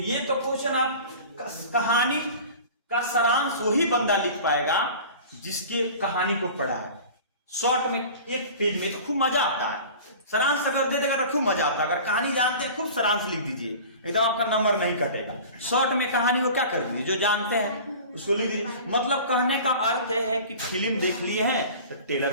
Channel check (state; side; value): inverted; both; correlation -0.39